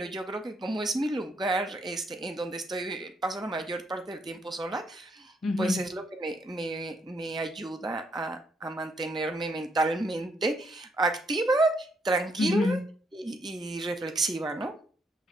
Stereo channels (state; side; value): normal; both; correlation 0.74